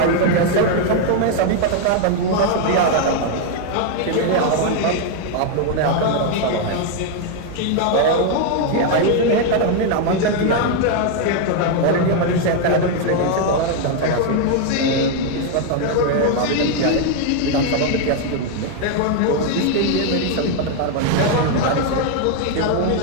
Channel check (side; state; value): both; different; correlation 0.01